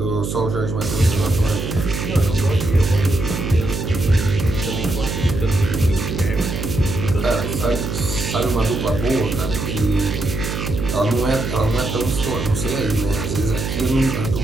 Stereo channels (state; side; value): noise; right; hum, 4 dB below the sound